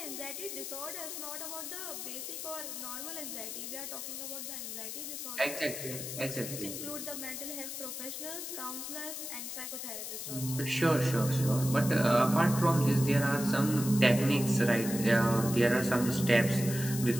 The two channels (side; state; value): left; noise; hiss, 7 dB below the sound